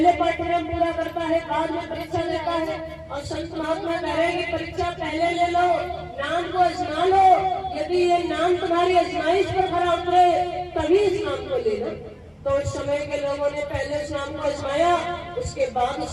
पाठ्यक्रम पूरा करता है, बाद में परीक्षा लेता है। और संत महात्मा कह रहे हैं कि परीक्षा पहले ले लो, नाम को आजमा लो, यदि ये नाम तुम्हारी आजमाइश पर खरा उतरे तभी इस नाम को ले लो। तो उस समय के लोगों ने पहले इस नाम को आजमाया, उसके बाद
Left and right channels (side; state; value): both; identical; correlation 1.00